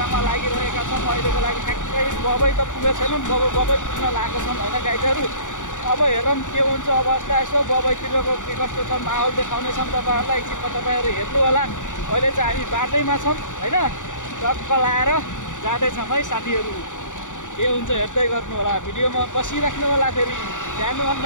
लागिरहेका छौँ। अहिलेको लागि ठ्याक्कै बबै त पुगेको छैनौँ, बबै पुग्न लागेको छौँ होइन गाइजहरू। अब हेरौँ के हुन्छ अवस्था। यसो बबैतिरको के कस्तो छ माहौल देखाउनेछौँ तपाईँहरूलाई। एकछिनमा तपाईँहरू हेर्नु होला। अहिले चाहिँ हामी बाटैमा छौँ होइन, टक्क लाएर जाँदैछौँ है साथीहरू। के हुन्छ हेर्दै गर्नु होला, भिडियोमा बसिराख्नु होला। फेरि जानु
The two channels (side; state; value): right; late; 0.86 ms